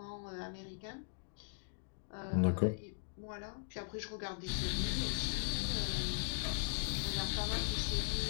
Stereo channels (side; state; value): right; silent; digital silence